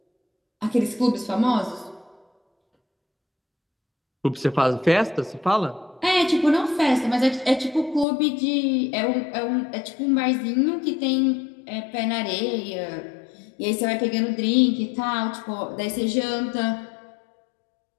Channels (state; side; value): drops out; right; at 8.1 s